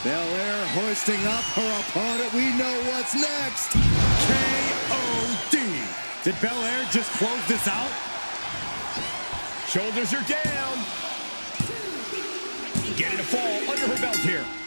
Belair hoisting up her opponent. We know what's next. KOD. Did Belair just close this out? Shoulders are down. Getting a fall under her belt here.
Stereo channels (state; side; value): inverted; both; correlation -1.00